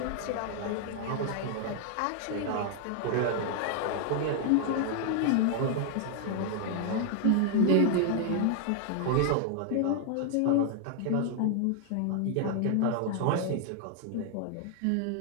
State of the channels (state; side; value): different; both; correlation 0.00